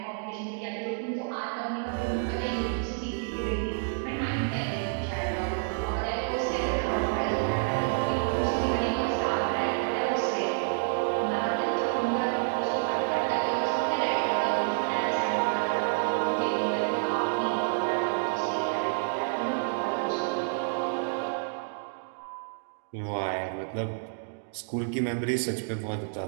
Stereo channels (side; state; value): left; silent; digital silence